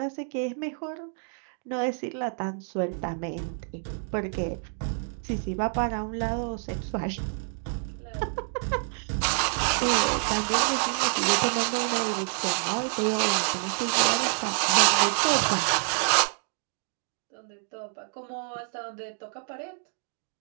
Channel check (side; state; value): left; silent; 59 dB below the other